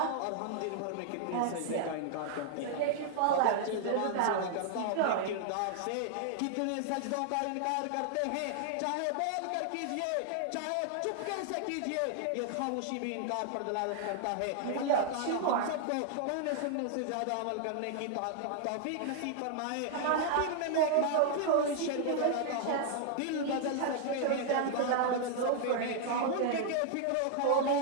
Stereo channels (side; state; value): both; different; correlation 0.00